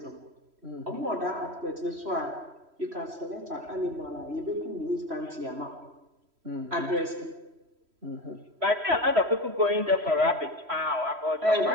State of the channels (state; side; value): late; left; 3.1 ms